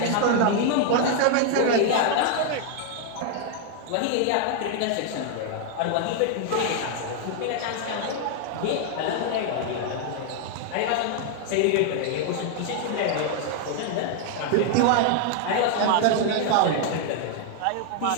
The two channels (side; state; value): both; different; correlation 0.00